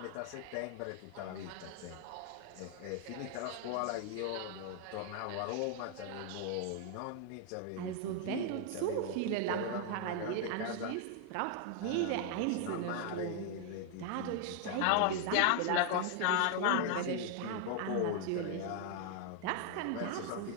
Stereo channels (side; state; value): both; different; correlation 0.00